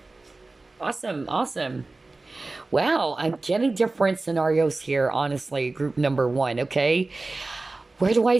Awesome. Awesome. Wow, I'm getting different scenarios here, honestly, group number one. Okay. Where do I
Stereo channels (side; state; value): left; quieter; 3.3 dB